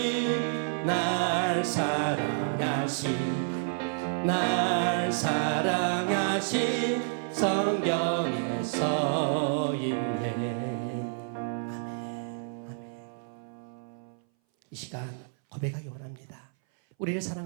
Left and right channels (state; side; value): silent; left; 58 dB below the other